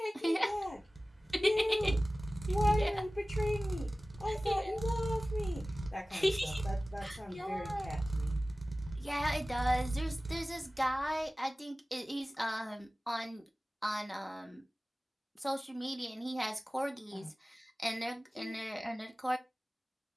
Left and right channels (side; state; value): both; normal; correlation 0.97